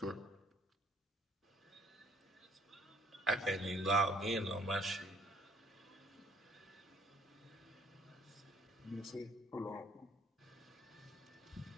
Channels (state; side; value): normal; both; correlation 0.61